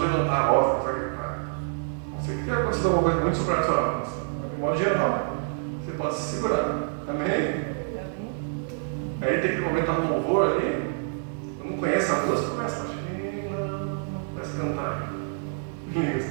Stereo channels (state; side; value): silent; left; digital silence